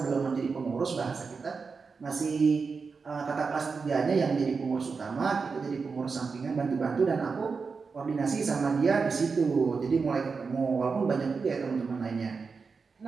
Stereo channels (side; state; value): left; quieter; 4.9 dB